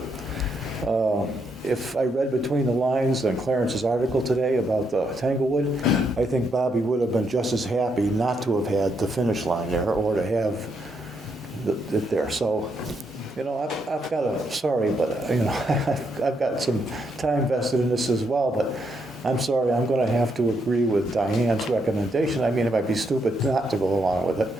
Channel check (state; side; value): normal; both; correlation 0.78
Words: If I read between the lines in Clarence's article today about the Tanglewood, I think Bobby would have been just as happy not to have had the finish line there or to have it there. So, you know, I've got a, sorry, but, you know, I've got some time vested in this as well, but I'm sorry, I'm going to have to agree with Diane's recommendation. I mean, it might be stupid not to go along with it